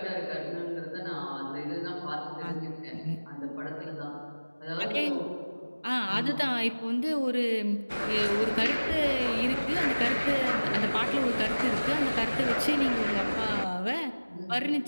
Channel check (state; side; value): inverted; both; correlation -1.00